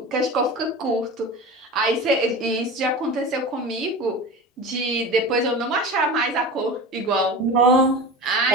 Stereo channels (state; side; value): normal; both; correlation 0.31